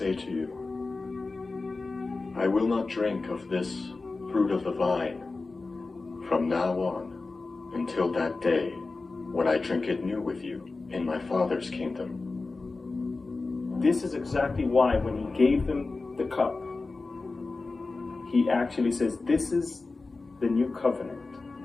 to you, I will not drink of this fruit of the vine from now on until that day when I drink it new with you in my Father's kingdom." This is exactly why when he gave them the cup, he actually says, "This is the new covenant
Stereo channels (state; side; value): quieter; right; 3.7 dB